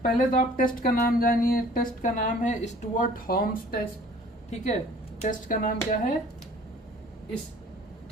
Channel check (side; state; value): both; normal; correlation 0.51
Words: पहले तो आप टेस्ट का नाम जानिए। टेस्ट का नाम है स्टुअर्ट हॉल्म्स टेस्ट। ठीक है, टेस्ट का नाम क्या है,